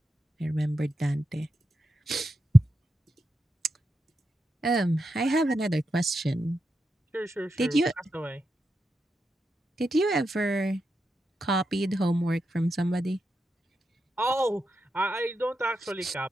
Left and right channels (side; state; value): both; normal; correlation 0.87